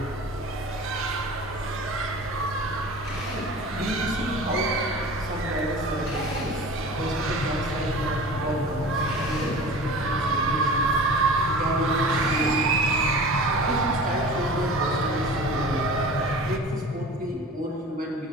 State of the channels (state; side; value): normal; both; correlation 0.38